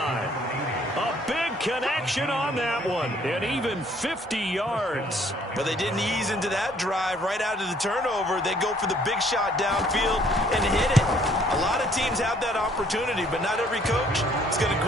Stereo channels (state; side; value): normal; both; correlation 0.62